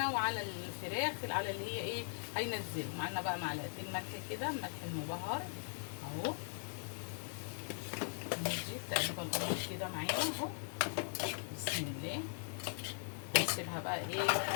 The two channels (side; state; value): right; silent; digital silence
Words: وعلى الفراخ على اللي هي ايه هينزل معانا بقى. معلقتين ملح كده، ملح المبهر اهو. نجيب تقريبا القمر كده معانا اهو بسم الله. نسيبها بقى